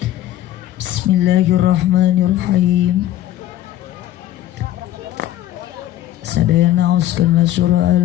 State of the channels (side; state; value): right; quieter; 13.3 dB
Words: Bismillahirrahmanirrahim. Sadayana uskanlah surah